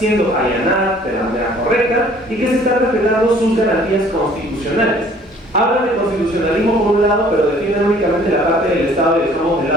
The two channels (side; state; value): both; normal; correlation 0.55